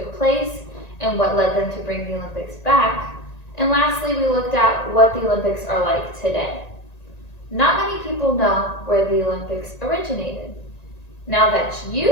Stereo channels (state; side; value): late; right; 1.9 ms